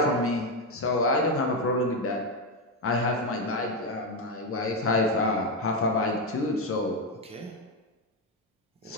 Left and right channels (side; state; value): both; normal; correlation 0.08